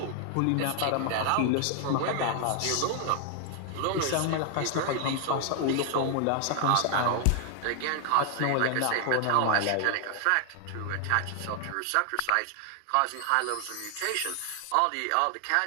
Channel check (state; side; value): different; both; correlation 0.00